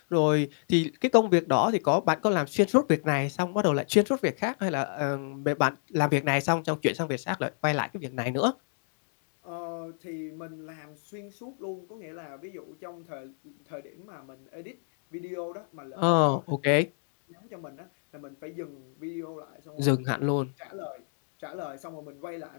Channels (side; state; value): right; silent; digital silence